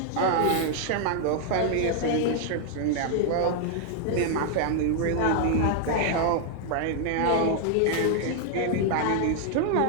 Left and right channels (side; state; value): both; different; correlation 0.00